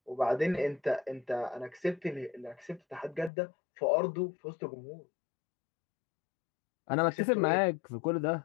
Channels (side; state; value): right; drops out; at 3.3 s